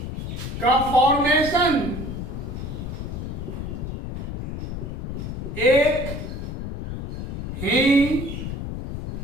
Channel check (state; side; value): noise; left; rumble, 6 dB below the sound